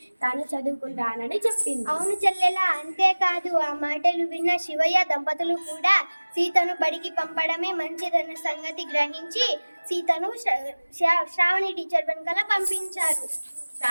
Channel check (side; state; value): both; inverted; correlation -1.00